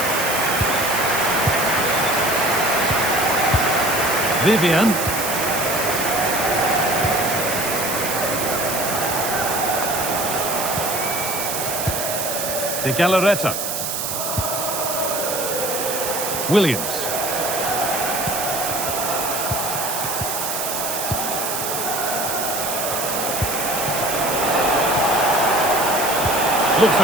Vivian. De Galarreta. Williams. Looks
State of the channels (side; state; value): right; noise; hiss, 3 dB below the sound